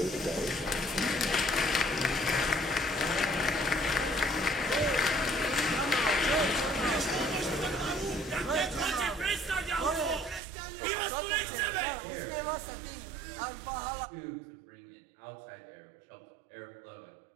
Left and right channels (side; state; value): left; drops out; at 10.4 s